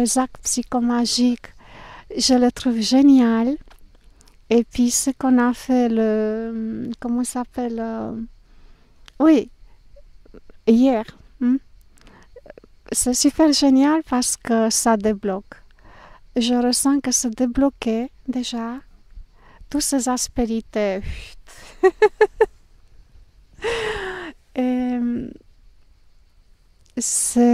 psychomagiques, je le trouve génial. Et puis ce qu'on a fait, comment ça s'appelle oui, hier. C'est super génial parce que ça débloque. Je ressens que c'est débloqué déjà. Toutes ces aspérités. Et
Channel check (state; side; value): identical; both; correlation 1.00